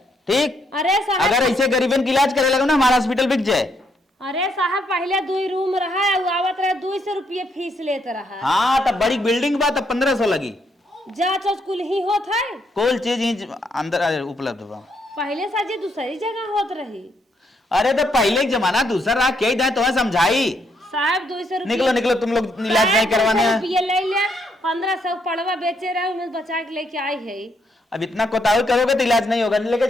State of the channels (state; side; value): normal; both; correlation 0.74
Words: ठीक? अरे साहब, अगर ऐसे गरीबन की इलाज करे लगे ना, हमारा हॉस्पिटल बिक जाए। अरे साहब पहले 2 रूम रहा, आवत रहे 200 रुपये फीस लेते रहा। हाँ, तब बड़ी बिल्डिंग बा, तब 1500 लगी। जांच कुल ही होत है, कोई चीज ही अंदर उपलब्ध बा। पहले साजी दूसरी जगह होत रही। अरे तो पहले एक जमाना दूसरा रहा, क्या ही तुम्हें समझाई। साहब 200 रुपये। निकलो निकलो, तुम लोग इलाज नहीं करवाने हैं। रुपये ले लिया, 1500 पड़वा बेचे रहे, उन्हें बचा के लेके आई है। अब इतना कोताही करोगे तो इलाज नहीं होगा। लेके